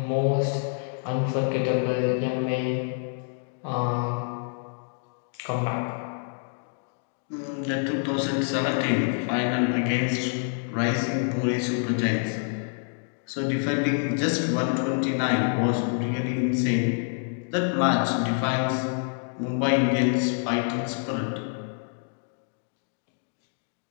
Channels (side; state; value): right; silent; 60 dB below the other